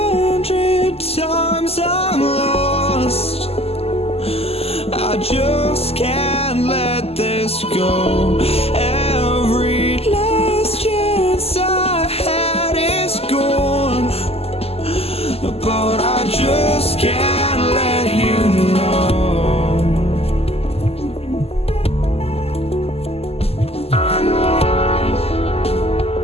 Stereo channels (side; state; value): right; late; 0.29 ms